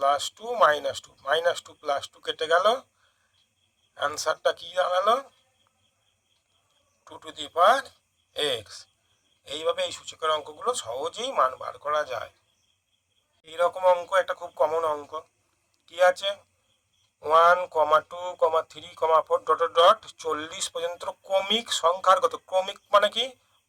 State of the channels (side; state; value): both; identical; correlation 1.00